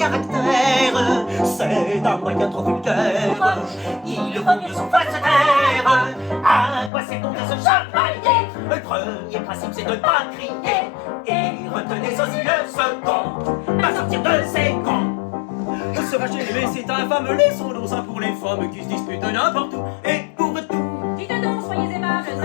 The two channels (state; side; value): drops out; right; at 6.9 s